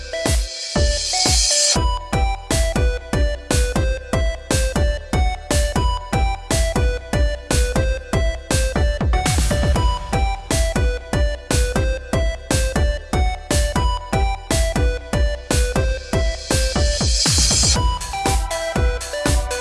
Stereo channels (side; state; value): both; identical; correlation 1.00